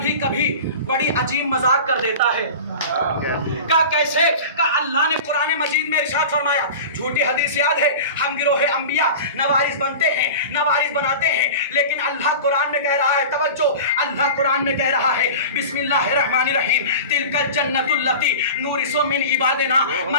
کبھی بڑی عجیب مذاق کر دیتا ہے. کا کیسے؟ کہ اللہ نے قرآن مجید میں ارشاد فرمایا، جھوٹی حدیث یاد ہے، ہم گروہ انبیاء نہ وارث بنتے ہیں نہ وارث بناتے ہیں. لیکن اللہ قرآن میں کہہ رہا ہے، توجہ، اللہ قرآن میں کہہ رہا ہے بسم اللہ الرحمن الرحیم تلک الجنت التی نورث من عبادنا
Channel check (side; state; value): both; inverted; correlation -0.34